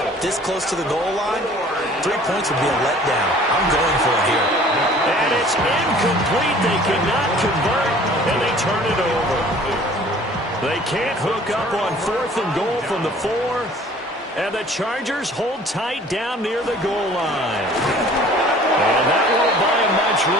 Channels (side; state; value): both; normal; correlation 0.51